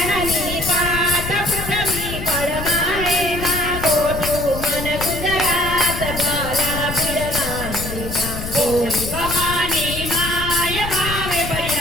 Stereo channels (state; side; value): noise; left; rumble, 7 dB below the sound